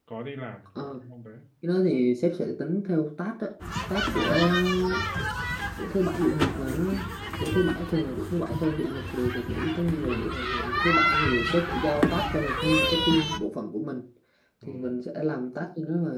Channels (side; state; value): both; identical; correlation 1.00